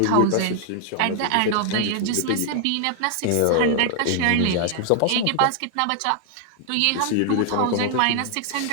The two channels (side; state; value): both; different; correlation 0.00